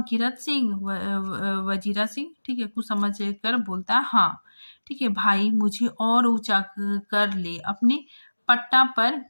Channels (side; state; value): both; inverted; correlation -1.00